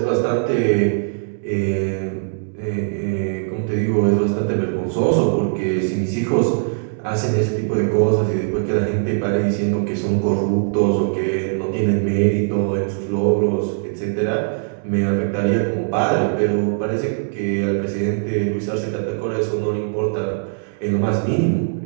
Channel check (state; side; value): silent; left; digital silence